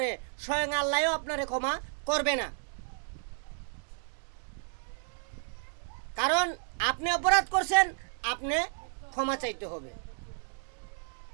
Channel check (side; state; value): left; silent; 56 dB below the other